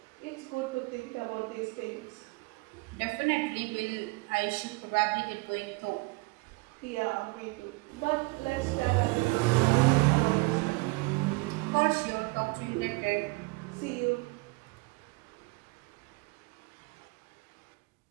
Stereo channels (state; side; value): quieter; left; 26.8 dB